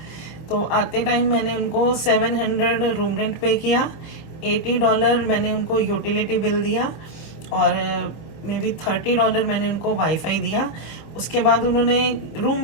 तो आते टाइम मैंने उनको 700 रूम रेंट पे किया, $80 मैंने उनको यूटिलिटी बिल दिया, और मे बी $30 मैंने उनको वाईफाई दिया। उसके बाद उन्होंने,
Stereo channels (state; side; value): late; right; 25 ms